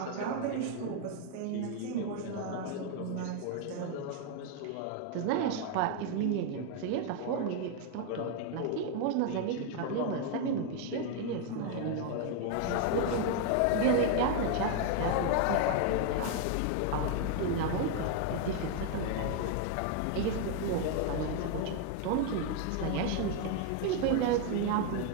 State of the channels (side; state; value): both; different; correlation 0.01